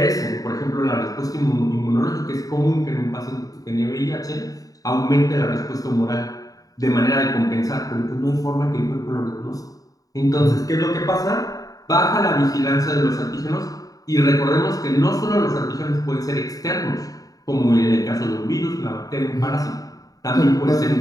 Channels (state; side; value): late; right; 0.18 ms